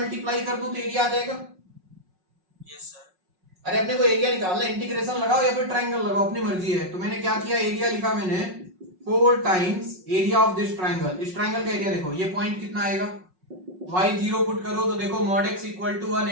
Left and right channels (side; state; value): left; late; 5.5 ms